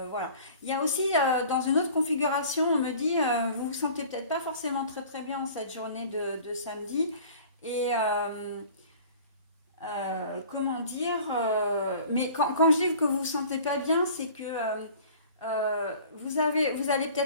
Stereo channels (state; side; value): inverted; both; correlation -0.46